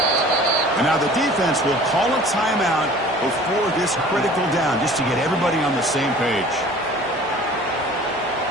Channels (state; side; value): normal; both; correlation 0.46